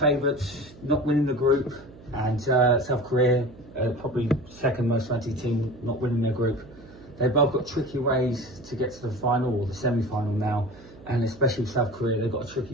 not winning the group, and South Korea, probably second most fancy team, not winning their group. They've both got tricky ways to get to the final or the semi-final now, and especially with South Korea, they've got a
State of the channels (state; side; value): noise; right; hum, 20 dB below the sound